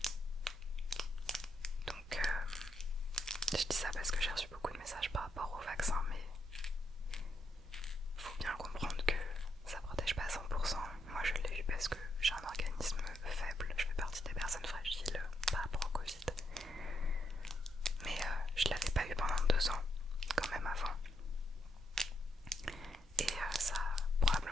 Donc je dis ça parce que j'ai reçu beaucoup de messages par rapport au vaccin, mais faut bien comprendre que ça protège pas à 100%. Moi je l'ai eu parce que j'ai un organisme faible, je fais partie des personnes fragiles par rapport au Covid. Mais je l'avais pas eu pendant 2 ans, quand même avant. Et ça a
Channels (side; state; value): both; normal; correlation 0.78